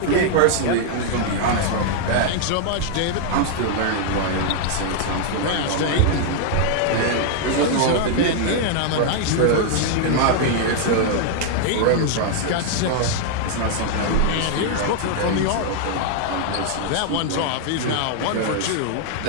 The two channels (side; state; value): both; different; correlation -0.01